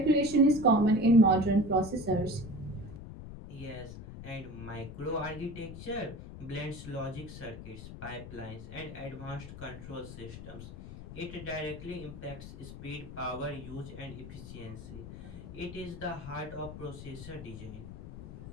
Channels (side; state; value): left; noise; rumble, 12 dB below the sound